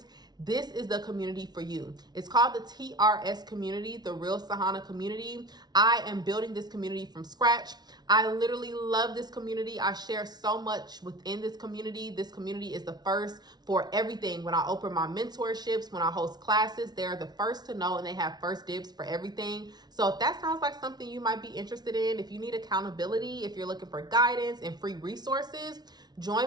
this is the community for you. It's called the TRS community, the Real Sahana community. I am building this community from scratch. I literally love this community. I share so much within this community. This community is the first for everything. When I open my mentorships, when I host classes, they're the first to know and they have first dibs for everything. So if that sounds like something you might be interested in, if you need accountability, if you're looking for guidance and free resources,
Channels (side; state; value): left; late; 0.19 ms